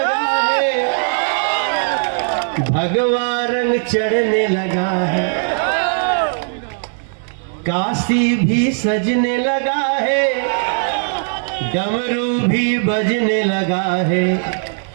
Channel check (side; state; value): left; silent; digital silence